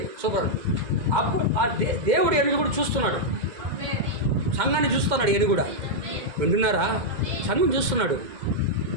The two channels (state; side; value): late; left; 2.1 ms